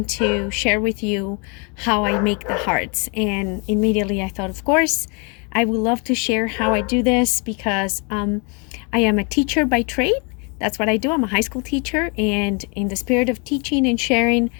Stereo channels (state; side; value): quieter; right; 33.3 dB